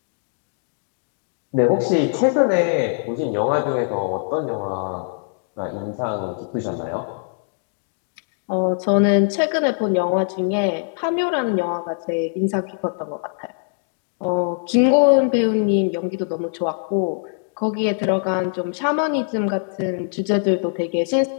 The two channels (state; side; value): silent; right; digital silence